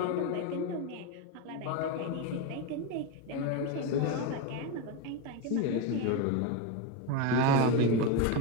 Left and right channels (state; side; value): different; both; correlation 0.04